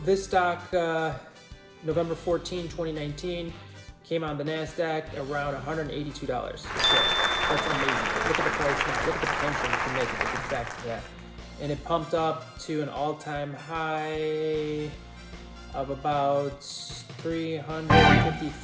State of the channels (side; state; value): both; identical; correlation 1.00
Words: this stock, November 14, 2019, came on the NASDAQ around $182. So that's amazing. Look at the price now. Look at the potential you can make if it gets back to that. And it pumped up to an all-time high of about